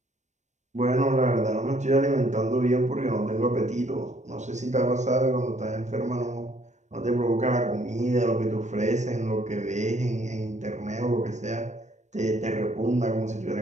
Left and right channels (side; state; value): left; late; 0.34 ms